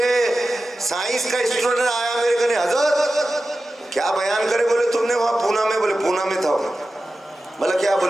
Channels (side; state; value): both; normal; correlation 0.94